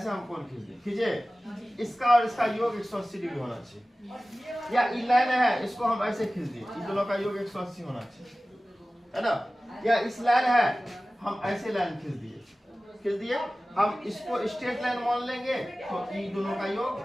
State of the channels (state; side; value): normal; both; correlation 0.97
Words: हम कोण खींच दिए, खींचे। इसका और इसका योग 180 डिग्री होना चाहिए। या ये लाइन है, इसको हम ऐसे खींच दिए, इन दोनों का योग 180 होना चाहिए, है ना। या इस लाइन है, हम ऐसे लाइन खींच दिए, हम इसको स्ट्रेट लाइन मान लेंगे तो इन दोनों का योग